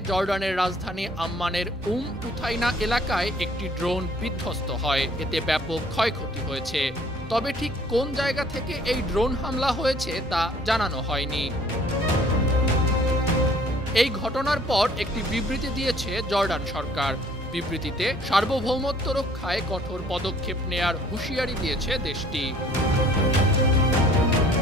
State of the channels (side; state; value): both; normal; correlation 0.56